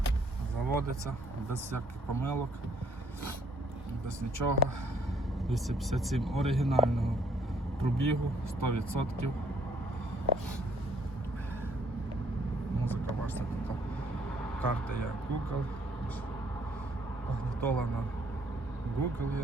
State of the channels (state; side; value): normal; both; correlation 0.65